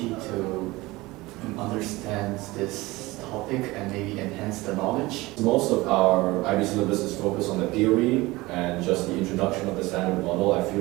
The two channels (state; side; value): quieter; left; 20.7 dB